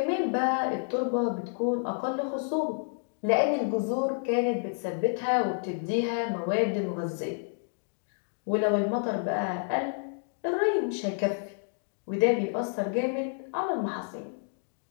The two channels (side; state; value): right; silent; 58 dB below the other